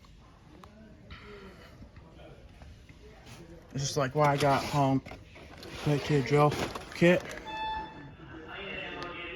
It's just like what I got home. Quick to drill kit.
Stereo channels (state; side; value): identical; both; correlation 1.00